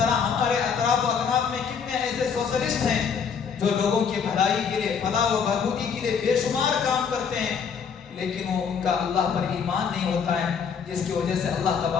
ہمارے اطراف و اکناف میں کتنے ایسے سوشلسٹ ہیں جو لوگوں کی بھلائی کے لیے، فلاح و بہبودی کے لیے بے شمار کام کرتے ہیں، لیکن وہ ان کا اللہ پر ایمان نہیں ہوتا ہے، جس کی وجہ سے اللہ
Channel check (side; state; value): right; quieter; 6.6 dB